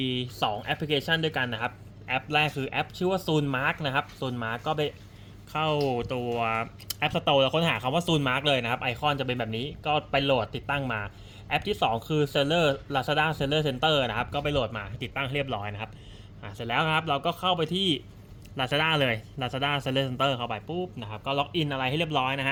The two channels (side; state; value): both; identical; correlation 1.00